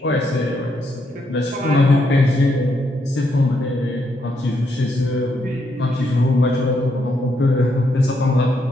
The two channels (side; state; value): both; normal; correlation 0.77